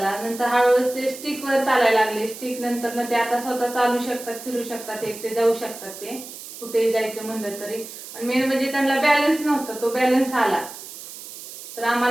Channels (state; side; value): noise; right; hiss, 13 dB below the sound